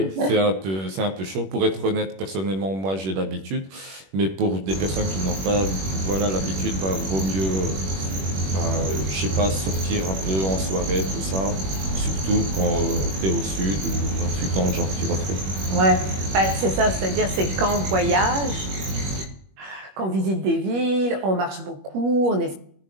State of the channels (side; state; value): left; late; 21 ms